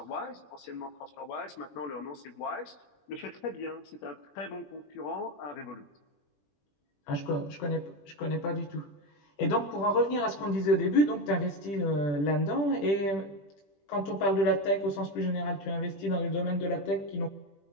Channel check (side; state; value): right; late; 20 ms